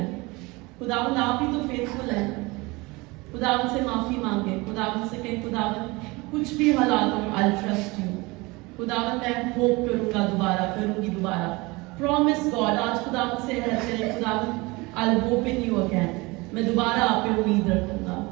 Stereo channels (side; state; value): left; quieter; 24.0 dB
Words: खुदावन आप ही तो फेथफुल हैं। खुदावन से माफी मांगे, खुदावन से कहें खुदावन कुछ भी हालात हो आई ट्रस्ट यू। खुदावन मैं होप करूंगा, दोबारा करूंगी दोबारा। प्रॉमिस गॉड, आज खुदावन से कहते हैं खुदावन I hope in you again. मैं दोबारा आप पे उम्मीद रखूंगा,